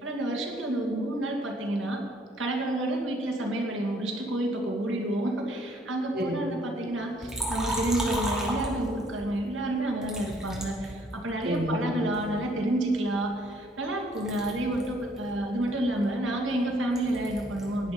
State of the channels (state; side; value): normal; both; correlation 0.64